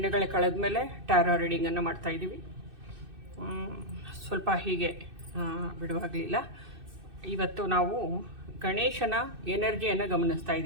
ಕಳೆದ ಮೇಲೆ ಟ್ಯಾರೋ ರೀಡಿಂಗನ್ನು ಮಾಡ್ತಾಯಿದ್ದೀವಿ. ಸ್ವಲ್ಪ ಹೀಗೆ ಬಿಡುವಾಗಲಿಲ್ಲ. ಇವತ್ತು ನಾವು ಗಣೇಶನ ಎನರ್ಜಿಯನ್ನು ಗಮನಿಸ್ತಾ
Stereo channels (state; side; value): late; left; 2.6 ms